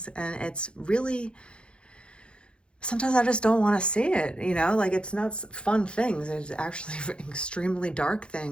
and it's really, sometimes I just don't want to see it, you know, like it's not fun things. It's actually extremely dark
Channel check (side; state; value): right; late; 0.055 ms